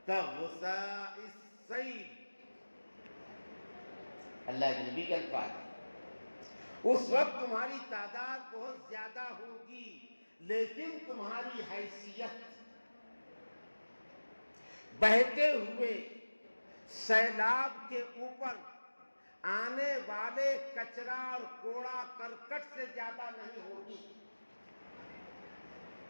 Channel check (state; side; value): inverted; both; correlation -1.00